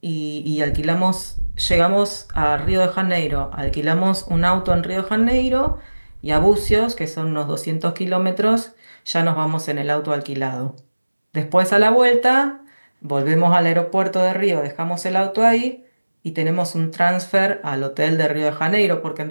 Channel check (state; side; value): inverted; both; correlation -1.00